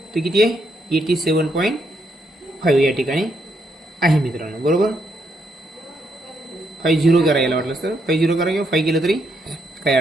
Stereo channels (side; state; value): both; normal; correlation 0.76